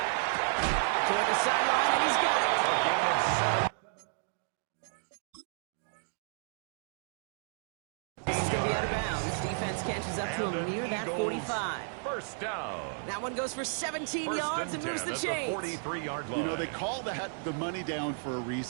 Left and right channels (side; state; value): left; silent; 56 dB below the other